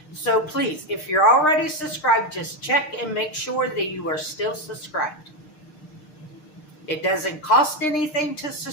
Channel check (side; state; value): right; late; 6.6 ms